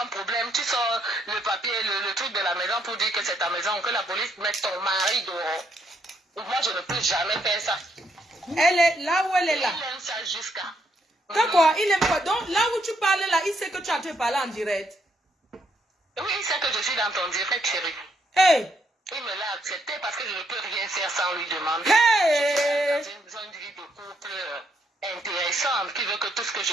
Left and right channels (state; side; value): normal; both; correlation 0.74